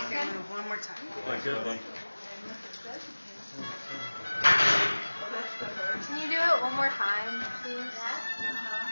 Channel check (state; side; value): inverted; both; correlation -1.00